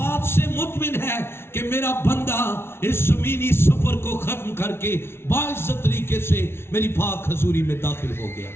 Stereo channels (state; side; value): late; right; 0.12 ms